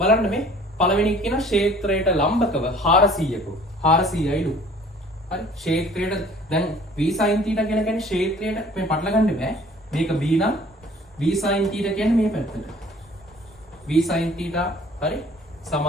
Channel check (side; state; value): both; normal; correlation 0.52